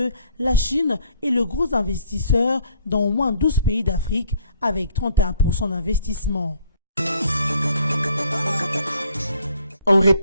la Chine est le gros investisseur dans au moins 12 pays d'Afrique avec 31% d'investissement. En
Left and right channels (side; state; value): both; inverted; correlation -0.61